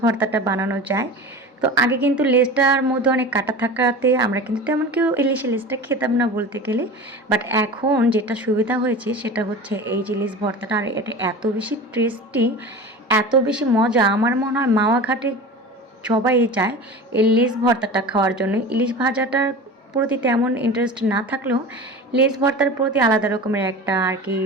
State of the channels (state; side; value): normal; both; correlation 0.33